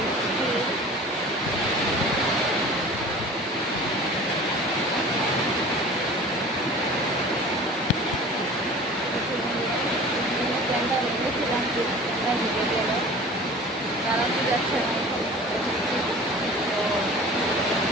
ক্যামেরা নিয়েছিলাম, ক্যামেরা ঢুকে গেল, চালাতে যাচ্ছে না। তো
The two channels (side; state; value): both; normal; correlation 0.41